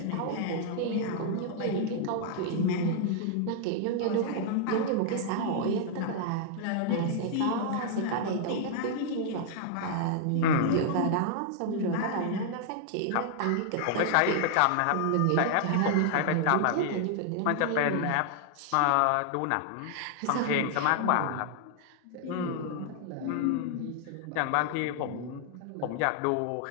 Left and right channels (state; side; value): different; both; correlation 0.00